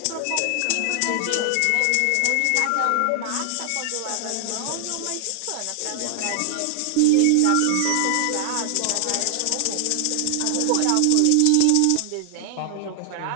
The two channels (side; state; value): both; different; correlation 0.00